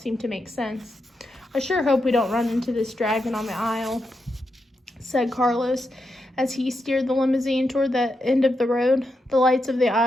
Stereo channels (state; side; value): normal; both; correlation 0.85